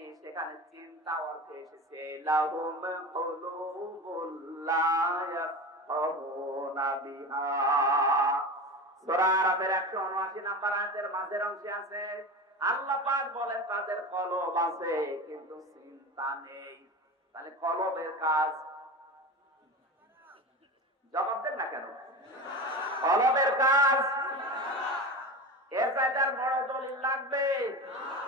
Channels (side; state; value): both; normal; correlation 0.28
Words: সেখানে চিন্তা অর্থে এসেছে লাহুম কুলুবুল লা ইয়াফকাহুনা বিহা। সূরা আরাফের 179 নম্বর আয়াতের মাঝের অংশে আছে, আল্লাহ পাক বলেন তাদের কলব আছে কিন্তু চিন্তা নেই। তাহলে কলবের কাজ, জবাব দেন না কেন? কলবের কাজ এর চাইতে বড় দলিল লাগবে?